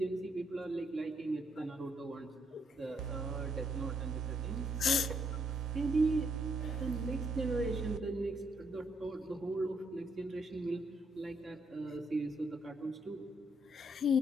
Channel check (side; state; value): both; normal; correlation 0.73